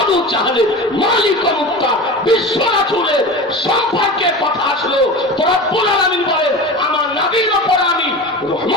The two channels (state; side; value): normal; both; correlation 0.31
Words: চাহলের, মালিক মুক্তার, বিশ্ব রাসূলের সম্পর্কে কথা আসলো, তো রব্বুল আলামিন বলেন, আমার নবীর উপর আমি